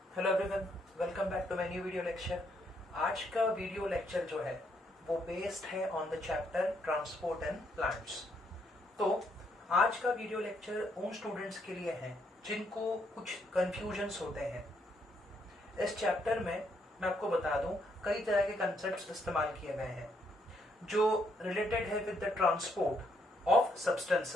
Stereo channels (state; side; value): normal; both; correlation 0.73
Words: Hello everyone, welcome back to my new video lecture. आज का video lecture जो है वो बेस्ड है on the chapter transport and plants. तो आज का वीडियो लेक्चर उन स्टूडेंट्स के लिए है जिनको कुछ कंफ्यूजन्स होते हैं। इस चैप्टर में मैं आपको बता दूं कई तरह के कंसेप्ट्स इस्तेमाल किए गए हैं जो रिलेटेड है with the transport of